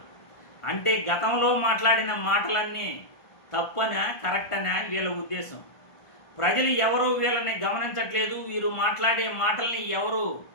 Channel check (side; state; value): right; late; 1.5 ms